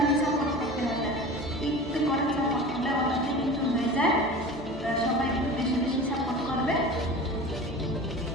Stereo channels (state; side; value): normal; both; correlation 0.35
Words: সাপোর্ট করতে হবে, একটু করে সাপোর্ট করলে ওটাতে কিন্তু হয়ে যায়। সবাই একটু বেশি বেশি সাপোর্ট করবে।